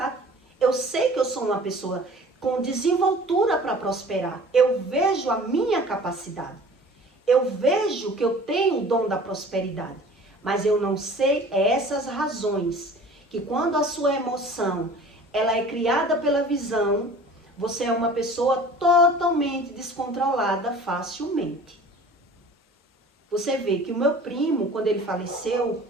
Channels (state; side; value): normal; both; correlation 0.45